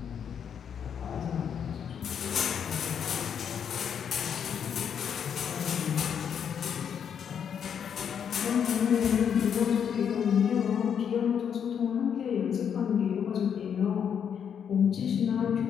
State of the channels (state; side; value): quieter; right; 7.9 dB